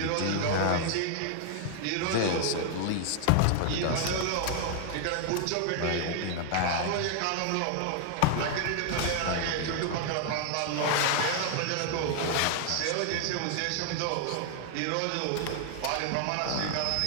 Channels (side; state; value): both; different; correlation 0.00